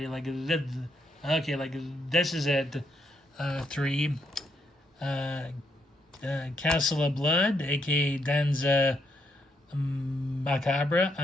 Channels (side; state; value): both; normal; correlation 0.77